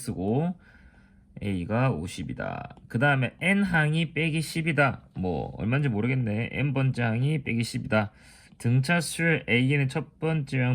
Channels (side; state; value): both; identical; correlation 1.00